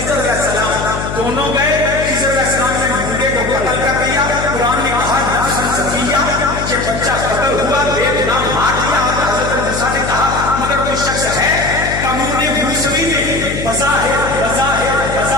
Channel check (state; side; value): noise; left; hum, 6 dB below the sound